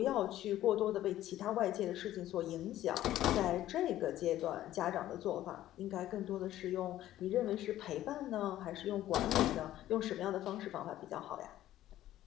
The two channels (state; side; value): quieter; right; 13.6 dB